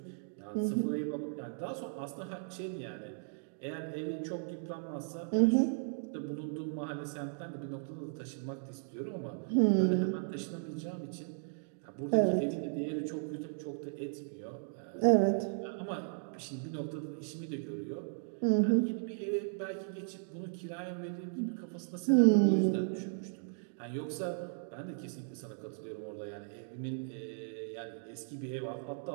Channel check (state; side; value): silent; left; digital silence